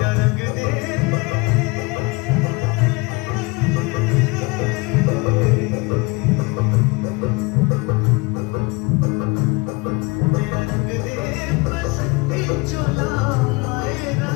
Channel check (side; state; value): right; quieter; 26.6 dB